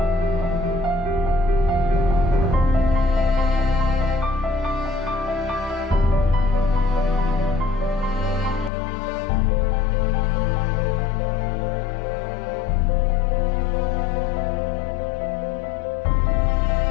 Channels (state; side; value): drops out; right; at 8.7 s